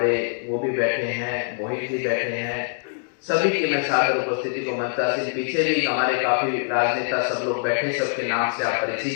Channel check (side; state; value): right; silent; digital silence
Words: वो भी बैठे हैं, मोहित जी बैठे हैं। सभी की मैं सादर उपस्थिति को मंचा से, पीछे भी हमारे काफी राजनेता सब लोग बैठे, सबके नाम से आप